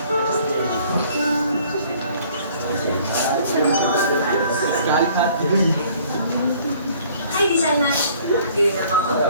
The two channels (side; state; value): both; inverted; correlation -0.56